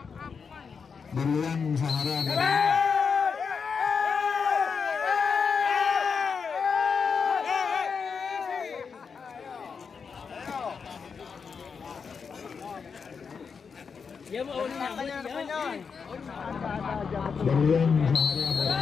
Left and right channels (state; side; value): quieter; right; 5.8 dB